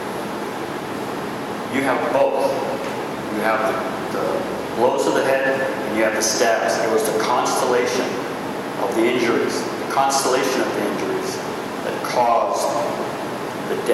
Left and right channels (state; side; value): identical; both; correlation 1.00